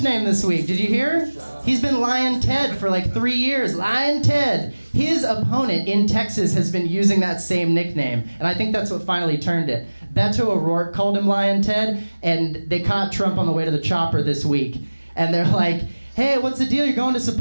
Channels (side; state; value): both; inverted; correlation -1.00